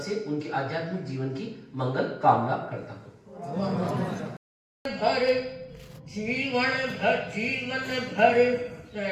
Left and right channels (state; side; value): identical; both; correlation 1.00